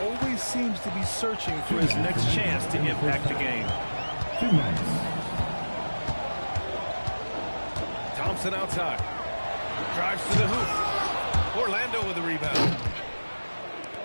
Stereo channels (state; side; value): inverted; both; correlation -1.00